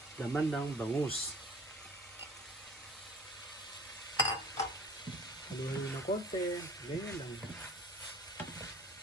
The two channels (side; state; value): both; normal; correlation 0.48